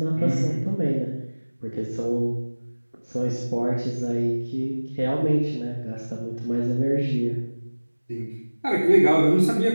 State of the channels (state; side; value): inverted; both; correlation -1.00